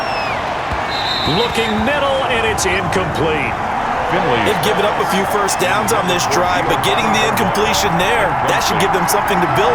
Looking middle, and it's incomplete. They've given up a few first downs on this drive, but getting the incompletion there, that should give them something to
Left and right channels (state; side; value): identical; both; correlation 1.00